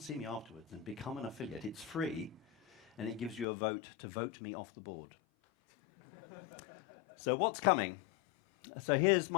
see me afterwards and become an affiliate. It's free, and it gives you a vote to vote me off the board. So what's coming? So here's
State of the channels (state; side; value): drops out; right; at 3.5 s